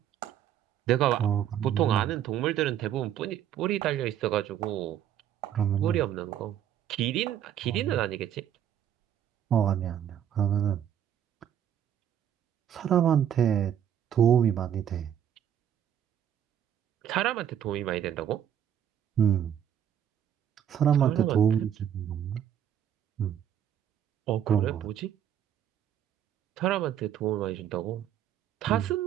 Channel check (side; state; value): left; quieter; 9.8 dB